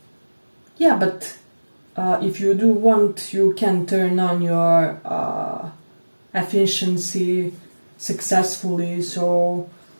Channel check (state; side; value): inverted; both; correlation -1.00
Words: Yeah, but if you do want, you can turn on your efficiency successfully. So